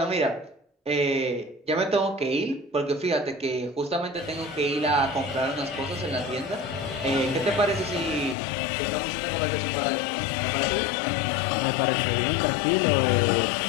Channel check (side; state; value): right; drops out; at 8.3 s